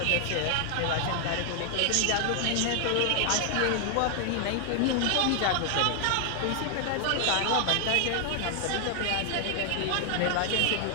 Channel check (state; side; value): different; both; correlation 0.00